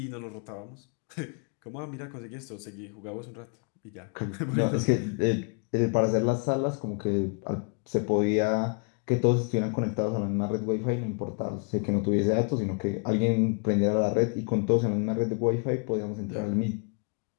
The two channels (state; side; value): quieter; right; 37.5 dB